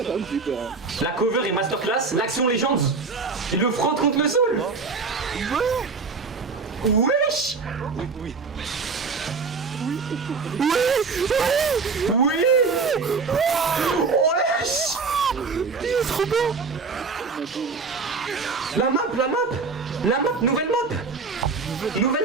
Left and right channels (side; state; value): left; quieter; 4.6 dB